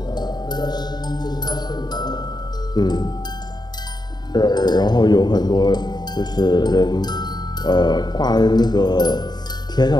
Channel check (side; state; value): right; late; 0.20 ms